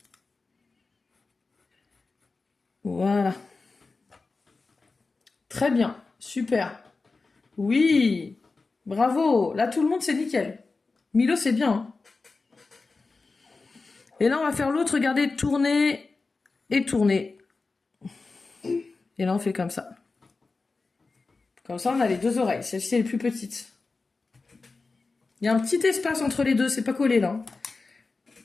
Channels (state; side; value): quieter; right; 3.9 dB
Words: Voilà. Très bien. Super. Oui. Bravo. Là, tout le monde, c'est nickel. Milo, c'est bien. Hein. Et là, on va faire l'autre. Regardez, tourner et tourner. Et là, on fait comme ça. Comme ça, on a les 2 oreilles. Celle-ci est les plus petite. Il y a un petit espace entre les deux. C'est pas collé, là.